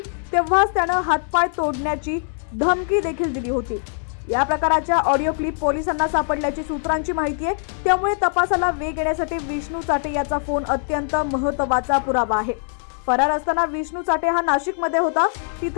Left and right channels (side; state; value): right; silent; digital silence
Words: तेव्हाच त्यानं हातपाय तोडण्याची धमकी देखील दिली होती। या प्रकाराच्या ऑडिओ क्लिप पोलिसांना सापडल्याची सूत्रांची माहिती आहे, त्यामुळे तपासाला वेग येण्यासाठी विष्णू चाटे याचा फोन अत्यंत महत्त्वाचा पुरावा आहे। फरार असताना विष्णू चाटे हा नाशिकमध्ये होता,